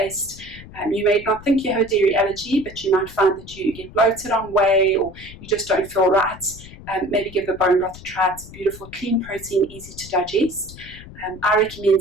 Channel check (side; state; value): left; noise; rumble, 17 dB below the sound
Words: You may not think you have a dairy allergy, but you might find that you get bloated on whey, or you just don't feel right. Maybe give the bone broth a try. It's a beautiful, clean protein, easy to digest. I recommend